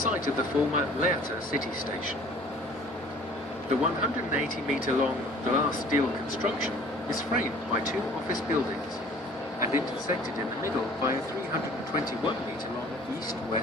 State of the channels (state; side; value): normal; both; correlation 0.51